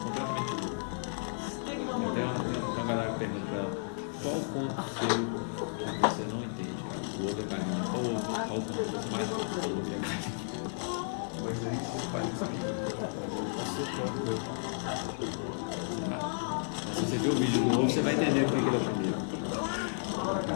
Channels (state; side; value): silent; right; digital silence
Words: Completamente louco. Tem uma galera que pergunta pra ela qual conto seu que você não entende. O outro é carinho. Qual conto você mais gosta? O outro é carinho. Mas aí você faz isso aqui. Se você ver o vídeo do novo, você vai entender o que ele é o primeiro.